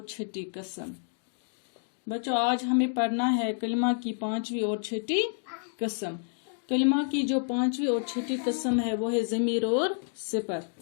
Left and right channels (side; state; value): right; silent; digital silence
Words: छठी कसम। बच्चों, आज हमें पढ़ना है कलिमा की पांचवी और छठी कसम। कलिमा की जो पांचवी और छठी कसम है वो है ज़मीर और